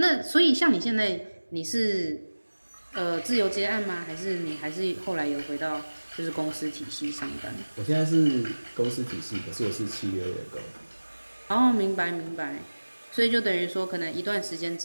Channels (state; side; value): inverted; both; correlation -1.00